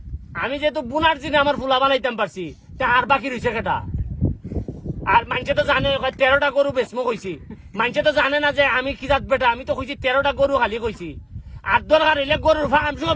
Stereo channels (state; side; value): identical; both; correlation 1.00